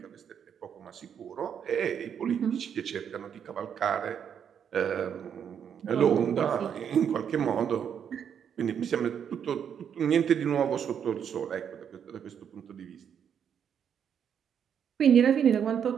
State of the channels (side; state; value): left; quieter; 8.1 dB